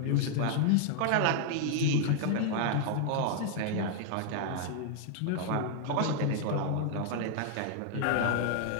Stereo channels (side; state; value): both; different; correlation 0.00